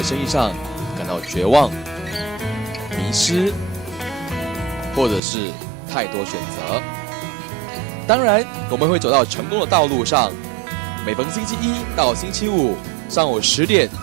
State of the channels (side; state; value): left; drops out; at 5.2 s